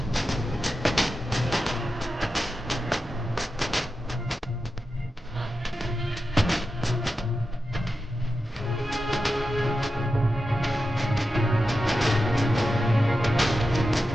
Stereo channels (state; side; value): normal; both; correlation 0.91